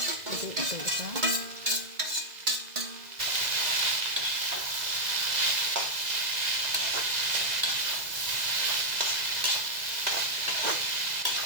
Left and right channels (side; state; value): left; late; 2.0 ms